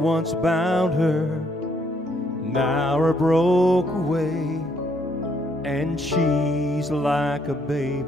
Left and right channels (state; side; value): normal; both; correlation 0.70